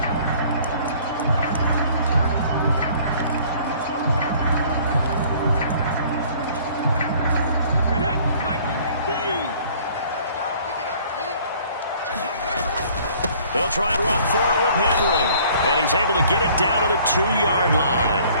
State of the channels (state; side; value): inverted; both; correlation -0.55